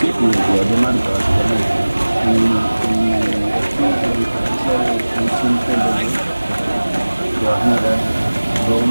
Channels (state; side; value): inverted; both; correlation -1.00